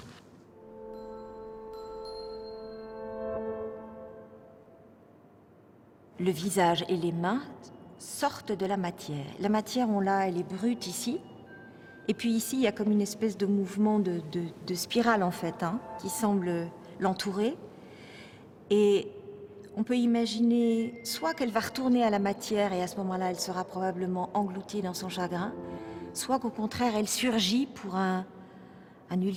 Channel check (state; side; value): identical; both; correlation 1.00